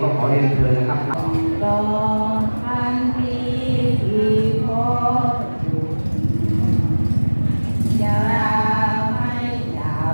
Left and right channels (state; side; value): inverted; both; correlation -1.00